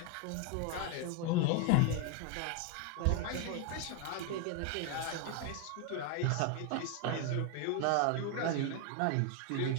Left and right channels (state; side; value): different; both; correlation 0.01